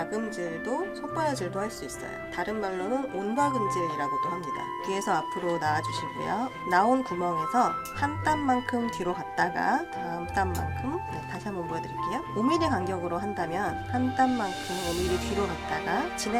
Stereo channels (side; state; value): both; identical; correlation 1.00